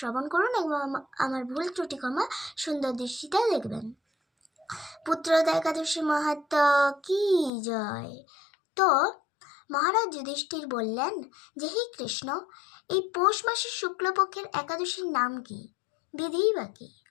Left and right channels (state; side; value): drops out; right; at 7.5 s